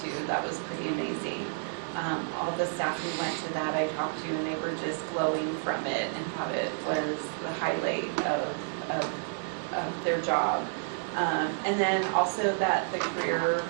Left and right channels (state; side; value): silent; left; digital silence